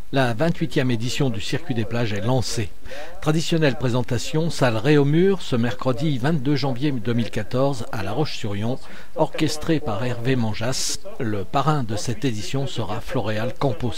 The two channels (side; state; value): both; identical; correlation 1.00